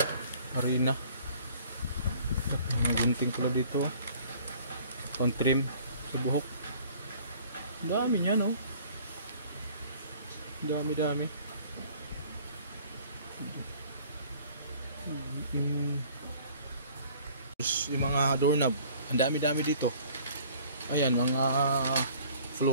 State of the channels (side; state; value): both; inverted; correlation -0.52